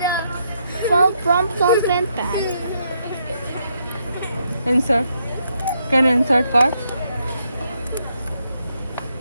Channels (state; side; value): inverted; both; correlation -0.77